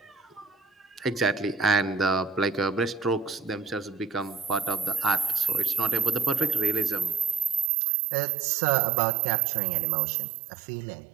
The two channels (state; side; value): drops out; left; at 7.7 s